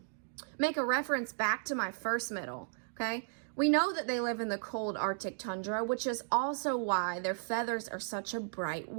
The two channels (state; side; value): silent; left; digital silence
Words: make a reference back to my first middle, okay? We know that they live in the cold Arctic tundra, which is also why their feathers are such a bright